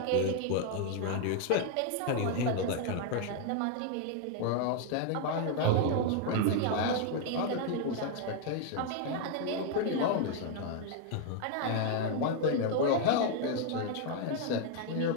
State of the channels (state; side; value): different; both; correlation 0.00